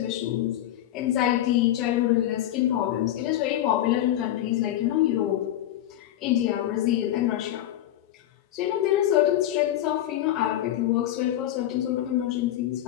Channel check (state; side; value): quieter; right; 12.8 dB